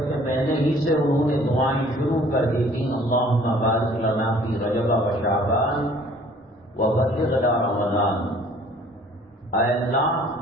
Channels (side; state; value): both; normal; correlation 0.54